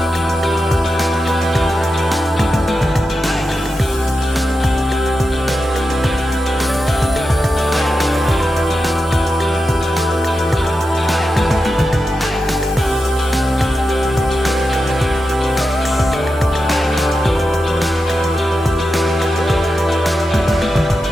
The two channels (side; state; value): both; normal; correlation 0.90